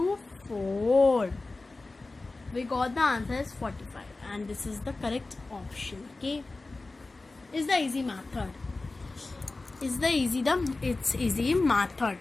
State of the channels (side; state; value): right; quieter; 3.3 dB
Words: 4. We got the answer is 45 and this is the correct option. Okay. Is the easy method. It's easy